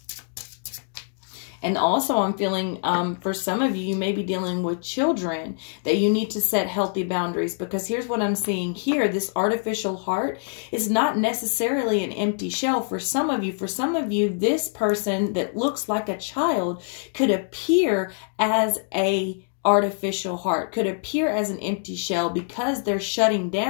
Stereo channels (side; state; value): right; silent; digital silence